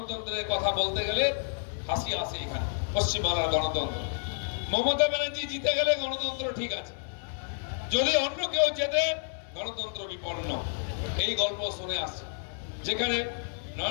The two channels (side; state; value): right; silent; digital silence